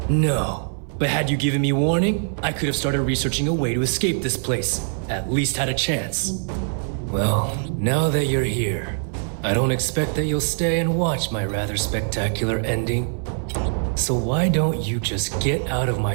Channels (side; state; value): left; silent; 64 dB below the other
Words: No, but had you given me warning, I could have started researching a way to escape this place. At least had a chance. Well, now that you're here, I don't expect that you'll stay and watch my rather spectacular ending. So why don't you just get out of